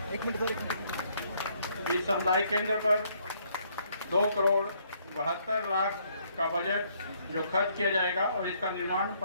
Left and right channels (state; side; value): inverted; both; correlation -0.68